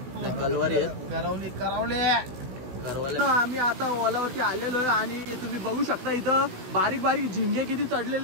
कलवारी आहेत. करवले. आम्ही आता ओलावरती आलेलो आहे आणि तुम्ही बघू शकता इथं बारीक बारीक झिंगे किती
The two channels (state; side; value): late; left; 16 ms